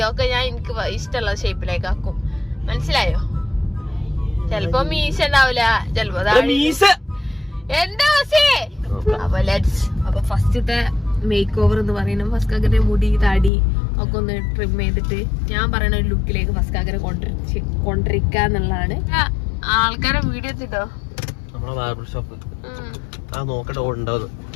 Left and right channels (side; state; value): right; drops out; at 13.5 s